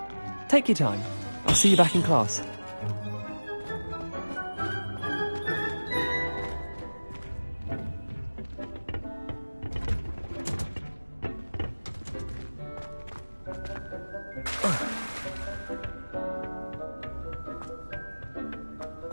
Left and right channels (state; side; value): inverted; both; correlation -1.00